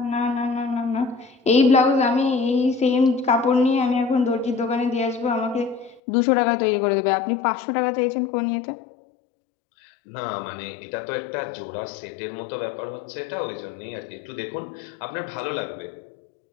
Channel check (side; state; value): right; drops out; at 6.0 s